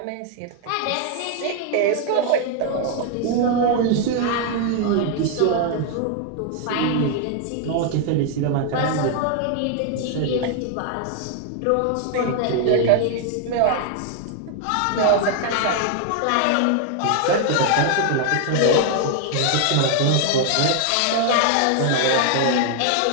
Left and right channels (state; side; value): different; both; correlation 0.00